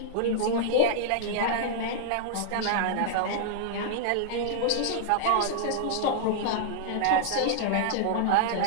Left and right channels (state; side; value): different; both; correlation -0.01